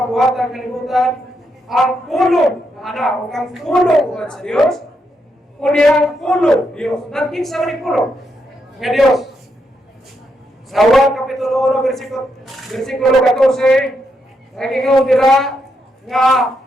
kalibutan, ang pulong na anak o ang pulong uwan sa Diyos, kundi ang pulong Diyos. Naging sa maning pulong nga Diyos. Sa 1 kapitulo 1, versikulo 14, naging dira nga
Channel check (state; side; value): normal; both; correlation 0.80